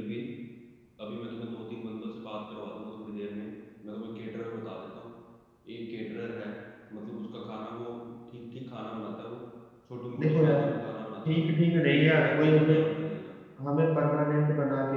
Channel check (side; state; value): both; identical; correlation 1.00